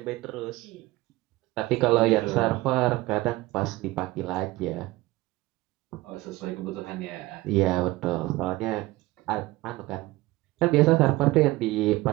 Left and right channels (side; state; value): left; quieter; 19.1 dB